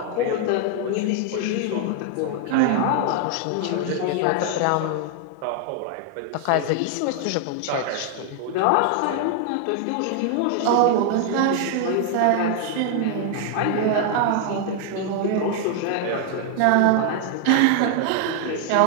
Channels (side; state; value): both; different; correlation 0.00